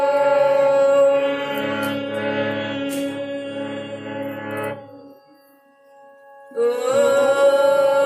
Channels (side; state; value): both; identical; correlation 1.00